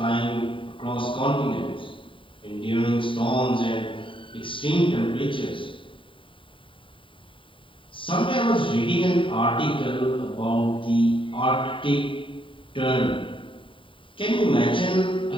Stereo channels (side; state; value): right; late; 0.25 ms